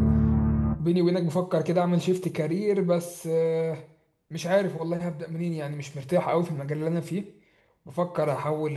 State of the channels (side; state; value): both; identical; correlation 1.00